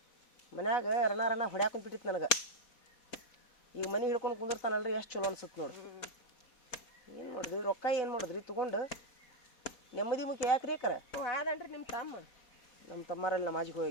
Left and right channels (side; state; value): right; late; 4.0 ms